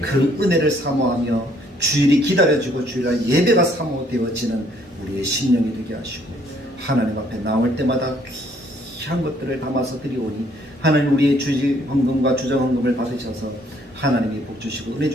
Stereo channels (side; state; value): both; normal; correlation 0.64